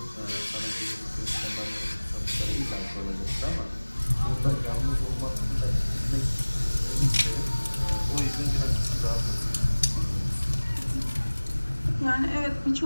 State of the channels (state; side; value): inverted; both; correlation -1.00